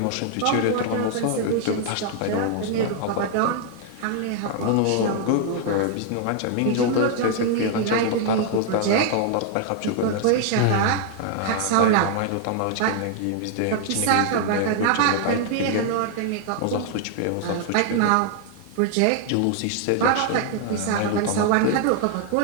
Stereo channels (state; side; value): different; both; correlation 0.00